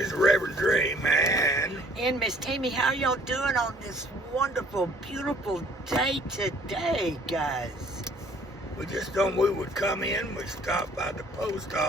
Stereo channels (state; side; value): normal; both; correlation 0.57